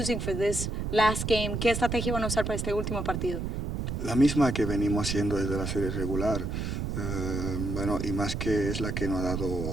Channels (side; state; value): right; noise; rumble, 3 dB below the sound